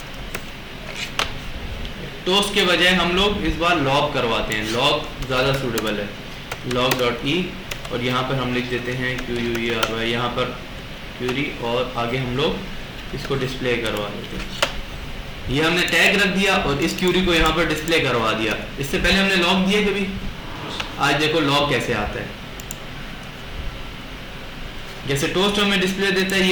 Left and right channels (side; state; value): both; identical; correlation 1.00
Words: टोस्ट के बजाय हम लोग इस बार लॉग करवाते हैं, लॉग ज़्यादा सूटेबल है, लॉग डॉट ई, और यहाँ पर हम लिख देते हैं QUERY, यहाँ पर क्यूरी, और आगे हम लोग इसको डिस्प्ले करवा देते हैं। ये हमने टैग रख दिया और इस क्यूरी को यहाँ पर डिस्प्ले करवा दिया। इससे पहले हमने लॉग दिया कभी, आज देखो लॉग कैसे आता है। जैसे टोस्ट हमें डिस्प्ले देता है,